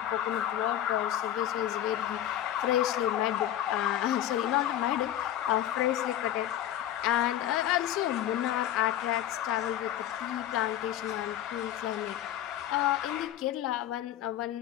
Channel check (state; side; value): quieter; right; 12.0 dB